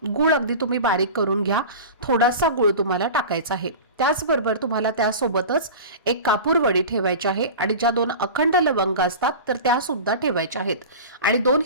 गूळ अगदी तुम्ही बारीक करून घ्या, थोडासा गूळ तुम्हाला टाकायचा आहे। त्याचबरोबर तुम्हाला त्यासोबतच एक कापूर वडी ठेवायची आहे आणि ज्या 2 अखंड लवंग असतात तर त्या सुद्धा ठेवायच्या आहेत आणि 2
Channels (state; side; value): inverted; both; correlation -0.32